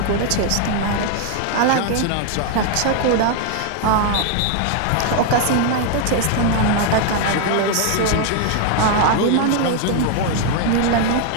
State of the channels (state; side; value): different; both; correlation 0.00